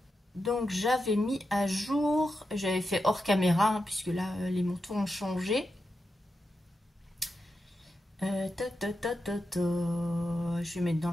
donc j'avais mis à jour, j'avais fait hors caméra, hein, puisque là, les montants ont changé. Je vais mettre dans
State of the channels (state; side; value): normal; both; correlation 0.88